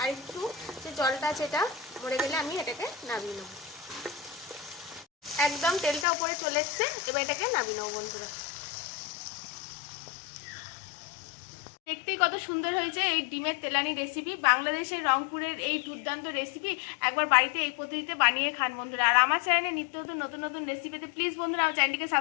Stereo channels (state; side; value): drops out; right; at 6.1 s